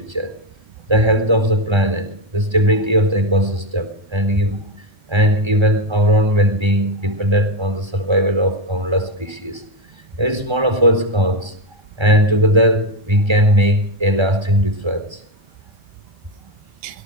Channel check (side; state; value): left; late; 1.3 ms